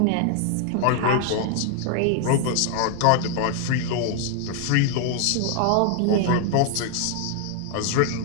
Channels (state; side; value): different; both; correlation 0.00